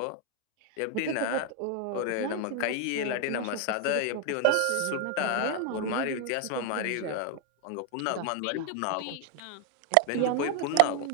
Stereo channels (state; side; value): different; both; correlation 0.01